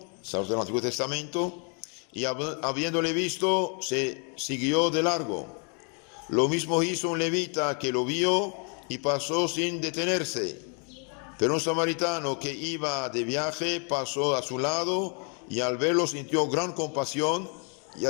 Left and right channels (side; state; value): right; quieter; 39.3 dB